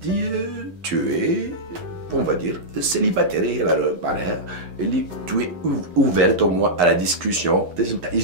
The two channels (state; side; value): late; left; 11 ms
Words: tu es on va dire célibataire معناها اللي tu es ouverte au moins à la discussion تنجم